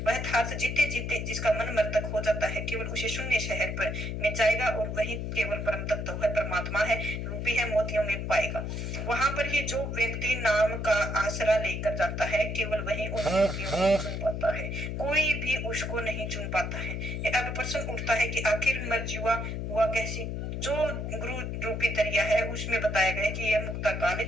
वह थार्थ जीते जीते जिसका मन मर्तक हो जाता है, केवल उसे शून्य शहर पर में जाएगा और वही केवल परम तत्व है, परमात्मा है, रूपी है, मोतियों में पाएगा। वहां पर ही जो व्यक्ति नाम का आसरा लेकर जाता है केवल वही उन मोतियों को चुन पाता है, कोई भी उसको नहीं चुन पाता है। अब प्रश्न उठता है कि आखिर मर्जीवा हुआ कैसी। जो गुरु रूपी दरिया है उसमें बताया गया कि यह मुक्ता काल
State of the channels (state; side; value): noise; left; hum, 4 dB below the sound